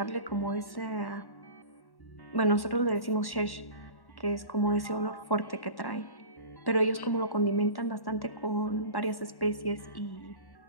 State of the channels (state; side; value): late; right; 1.1 ms